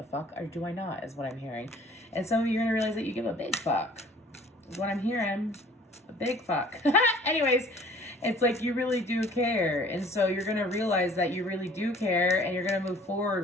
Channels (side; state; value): both; normal; correlation 0.52